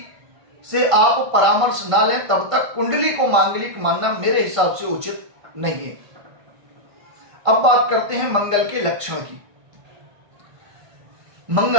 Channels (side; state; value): left; late; 1.5 ms